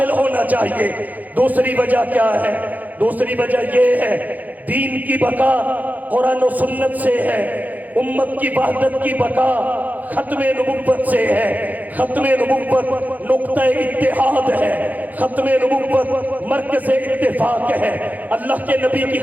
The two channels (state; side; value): late; left; 0.081 ms